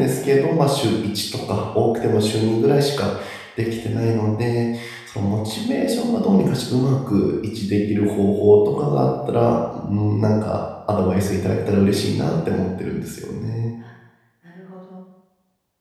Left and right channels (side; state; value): both; identical; correlation 1.00